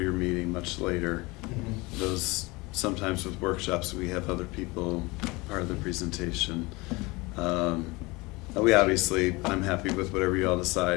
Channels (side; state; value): right; quieter; 23.9 dB